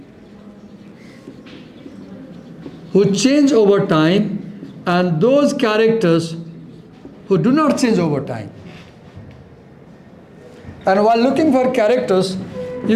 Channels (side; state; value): both; identical; correlation 1.00